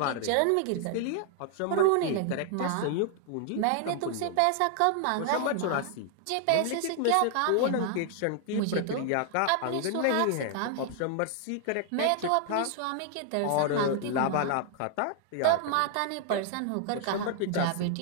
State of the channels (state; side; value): different; both; correlation 0.00